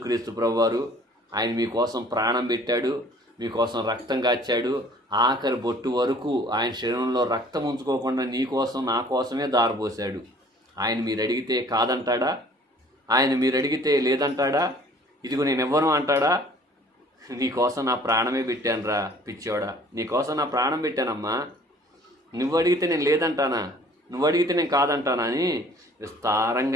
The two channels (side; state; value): both; normal; correlation 0.53